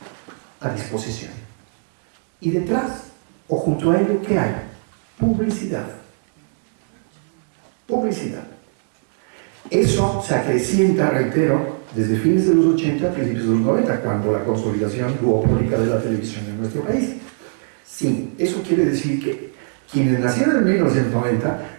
a disposición. Y detrás, o junto a ello, ¿qué hay? Publicidad. Publicidad. Eso se acrecienta, reitero, desde fines de los 80 a principios de los 90, cuando la consolidación duopólica de la televisión en nuestro país. Sí, eso quiere decir que quienes nacieron en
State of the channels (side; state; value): left; silent; digital silence